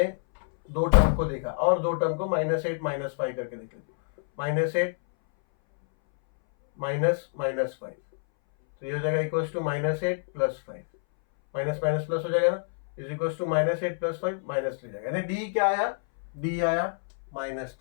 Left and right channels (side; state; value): right; silent; 60 dB below the other